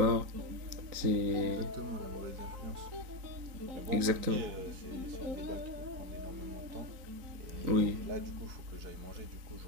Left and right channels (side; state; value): left; late; 4.0 ms